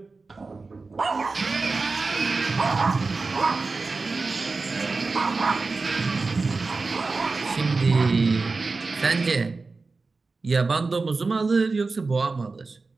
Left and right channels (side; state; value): left; quieter; 4.0 dB